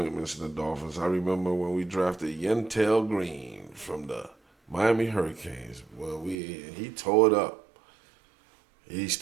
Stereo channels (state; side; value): drops out; left; at 6.4 s